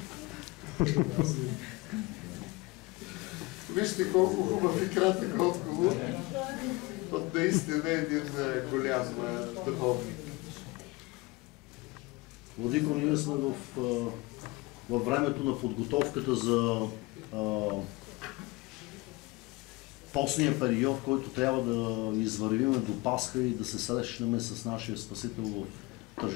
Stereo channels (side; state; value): right; quieter; 23.2 dB